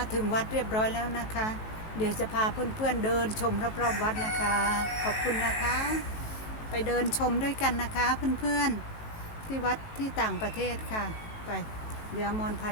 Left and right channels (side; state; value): right; late; 18 ms